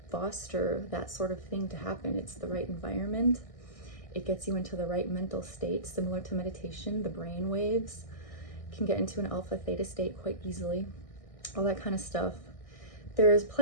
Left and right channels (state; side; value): late; right; 1.6 ms